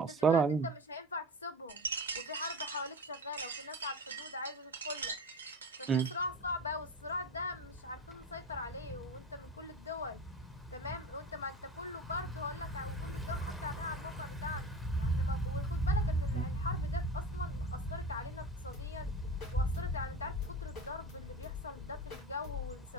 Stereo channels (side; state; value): both; normal; correlation 0.30